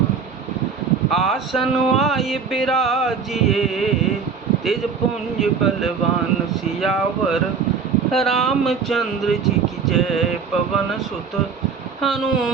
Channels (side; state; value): left; quieter; 5.8 dB